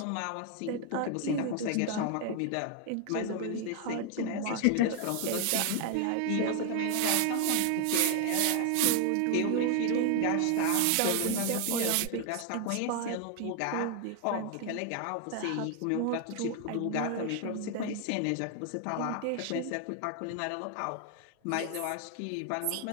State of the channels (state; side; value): different; both; correlation 0.00